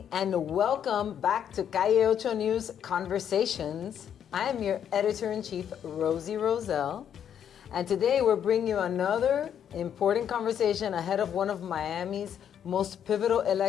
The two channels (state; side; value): quieter; right; 9.0 dB